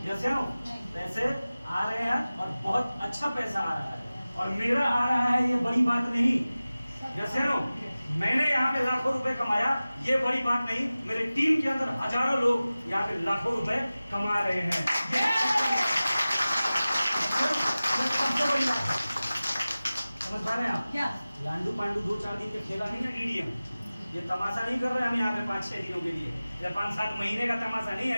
जैसे नो? पैसे आ रहे हैं और बहुत अच्छा पैसा आ रहा है, और मेरा आ रहा है, ये बड़ी बात नहीं, जैसे नो? मैंने यहाँ पे लाखों रुपए कमाया, ये बड़ी बात नहीं, मेरे टीम के अंदर हजारों लोग यहाँ पे लाखों रुपए कमा रहे हैं, समझ पा रहे हैं आप? लांडू पांडू 2-4 दिन के खेला नहीं है डीडीएम, ये तमाशा नहीं कर रहे हम यहाँ पे 5-6 दिनों के लिए, या 5-7 महीने का तमाशा नहीं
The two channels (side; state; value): both; inverted; correlation -0.97